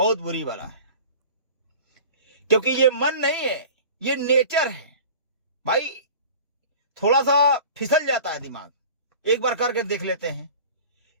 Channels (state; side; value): inverted; both; correlation -0.41